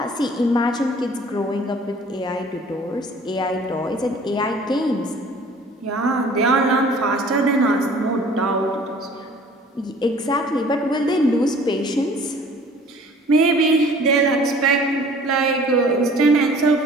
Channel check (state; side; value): normal; both; correlation 0.50